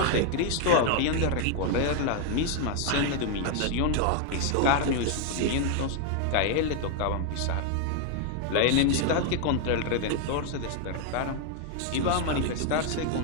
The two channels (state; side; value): different; both; correlation 0.00